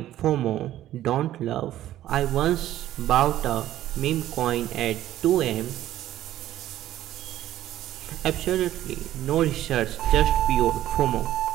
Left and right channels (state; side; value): quieter; left; 13.3 dB